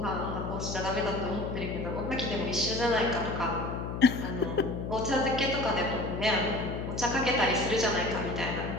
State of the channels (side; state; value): left; noise; hum, 5 dB below the sound